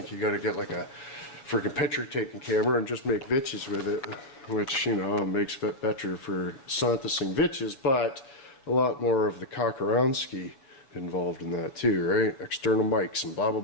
You gotta get like a friggin' picture taking camera and just make vitches with it, which, you know, makes it better for Santosing vitches, but a lot more of the Cock-around-ski involved in that too, right? External mics and blah blah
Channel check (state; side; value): late; right; 7.2 ms